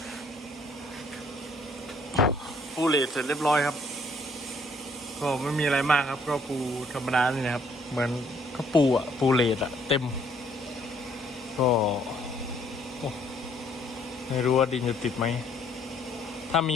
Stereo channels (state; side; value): normal; both; correlation 0.64